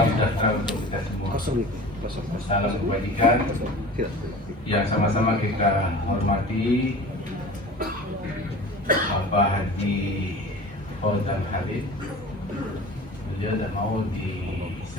sejahtera untuk kita semua. Salam kebajikan yang sama-sama kita hormati Bapak Haji Fauzan Khalid. Beliau tak mau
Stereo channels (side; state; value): both; normal; correlation 0.38